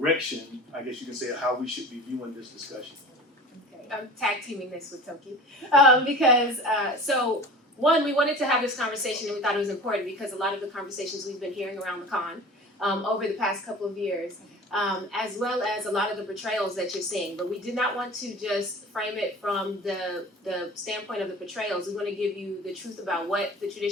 I guess you can say, of how we should be viewing this discussion. Okay, I'm tag teaming this with Toki because one, we wanted to have this conversation, and we thought it was important because a lot of the conversations we've been hearing around the con over the past couple of years, as well as a lot of the portrayals that you're seeing. But we did not want to just frame it from the standpoint of the portrayals. We want to give you the truth about what the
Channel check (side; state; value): both; normal; correlation 0.38